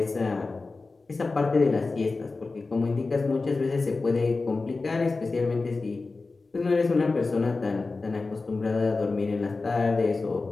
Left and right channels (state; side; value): quieter; right; 3.8 dB